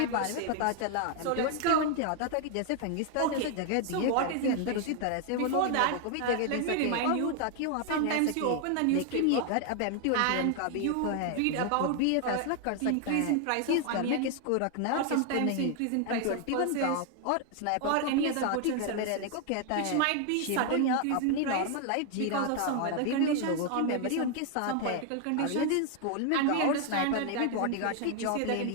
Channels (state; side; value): different; both; correlation 0.00